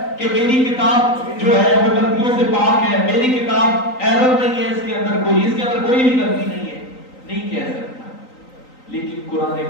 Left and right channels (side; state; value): right; late; 3.9 ms